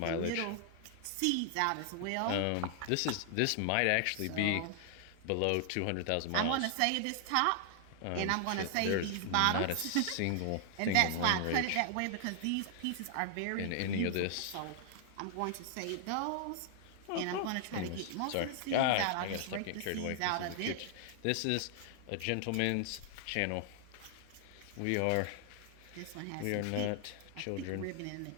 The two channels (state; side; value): different; both; correlation 0.00